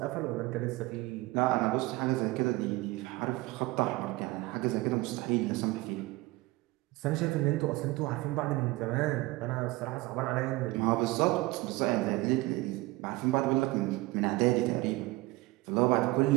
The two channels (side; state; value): left; quieter; 20.7 dB